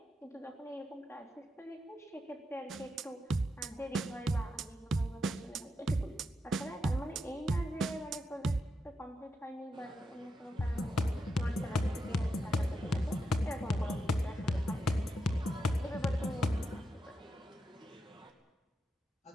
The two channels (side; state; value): both; normal; correlation 0.86